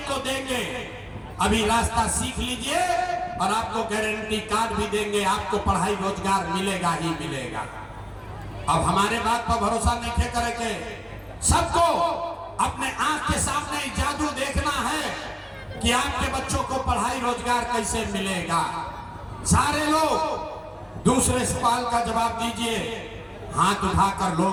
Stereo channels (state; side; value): identical; both; correlation 1.00